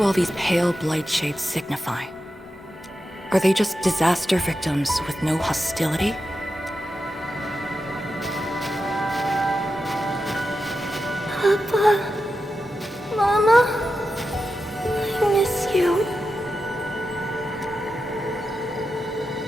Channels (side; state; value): both; normal; correlation 0.89